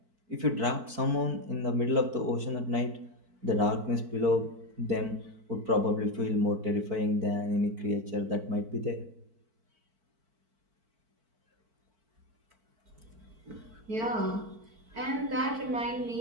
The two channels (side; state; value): left; late; 4.5 ms